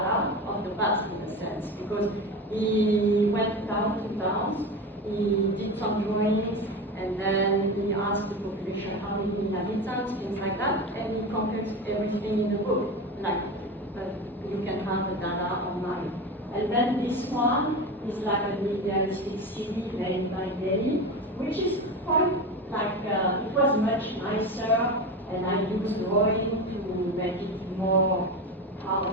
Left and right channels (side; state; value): both; normal; correlation 0.24